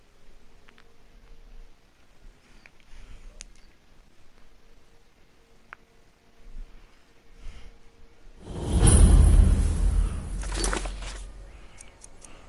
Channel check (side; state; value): both; identical; correlation 1.00